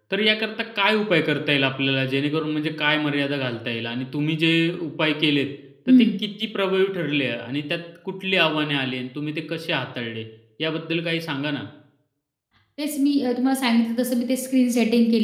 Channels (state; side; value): identical; both; correlation 1.00